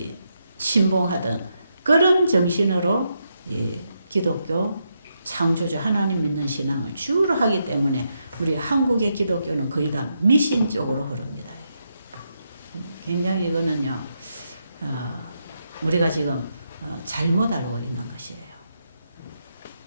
신봉하던 그런 정신으로 기독교 창조주 하나님 믿는 신앙을 주로 하기 때문에 우리 한국의 기독교는 거의 다 미신 쪽으로 흐릅니다. 굉장히 이거는요, 우리가 지금 잘못 알고 있는 것이에요.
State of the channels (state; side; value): inverted; both; correlation -0.82